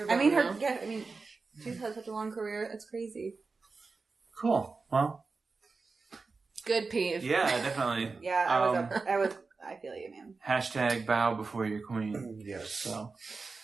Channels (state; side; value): quieter; left; 4.2 dB